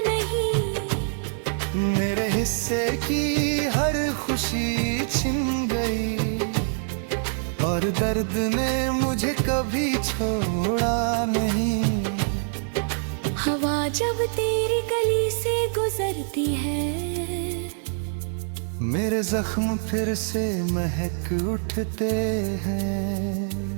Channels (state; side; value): silent; left; digital silence